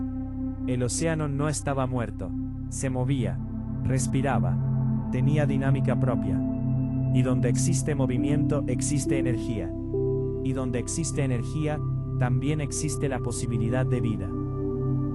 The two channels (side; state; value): both; identical; correlation 1.00